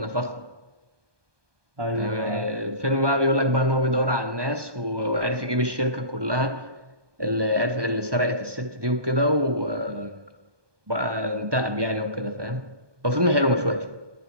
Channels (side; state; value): left; late; 1.2 ms